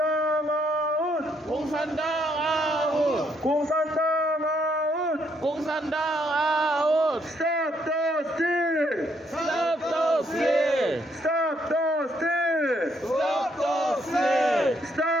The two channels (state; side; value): normal; both; correlation 0.72